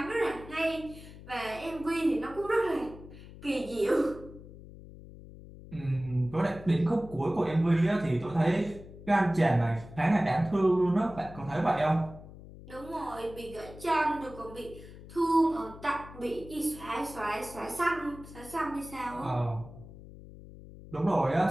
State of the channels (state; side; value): noise; left; hum, 16 dB below the sound